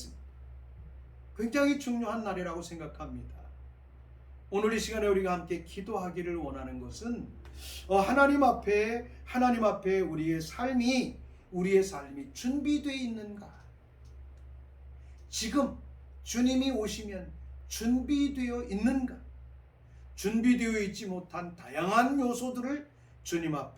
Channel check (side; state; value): both; identical; correlation 1.00